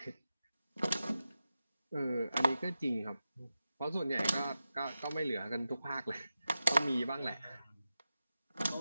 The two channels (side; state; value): both; inverted; correlation -0.91